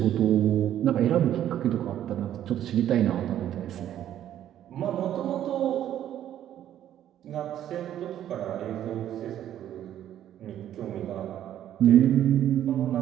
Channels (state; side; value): quieter; left; 11.3 dB